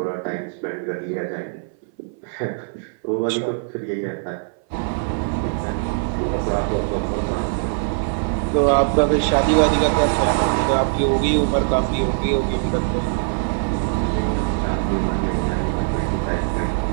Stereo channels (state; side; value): silent; left; 60 dB below the other